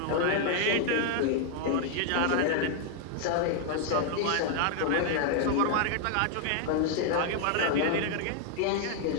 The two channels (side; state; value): both; different; correlation 0.00